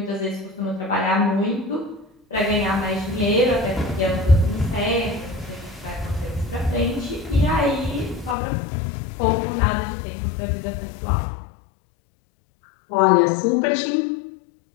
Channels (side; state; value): right; drops out; at 8.3 s